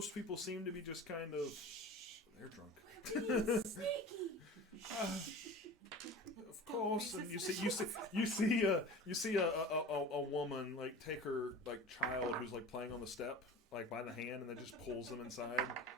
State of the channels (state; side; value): normal; both; correlation 0.36